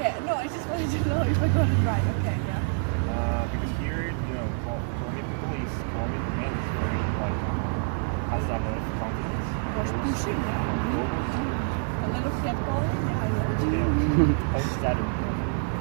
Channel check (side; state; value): left; silent; 60 dB below the other